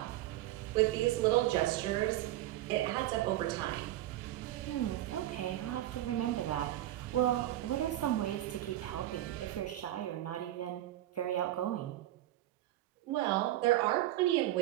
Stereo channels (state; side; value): quieter; left; 14.6 dB